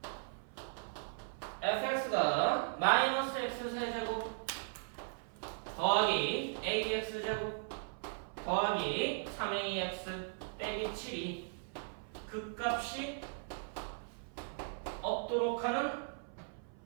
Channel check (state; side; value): silent; left; 53 dB below the other